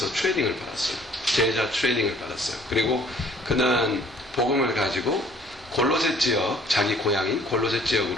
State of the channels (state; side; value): normal; both; correlation 0.57